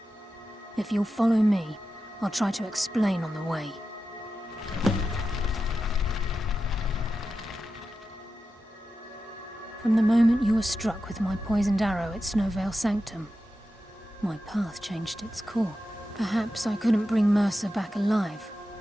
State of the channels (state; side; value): normal; both; correlation 0.91